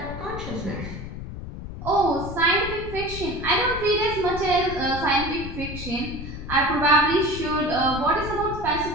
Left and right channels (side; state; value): left; noise; rumble, 9 dB below the sound